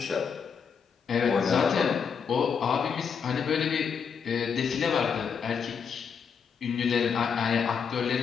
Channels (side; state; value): right; quieter; 6.5 dB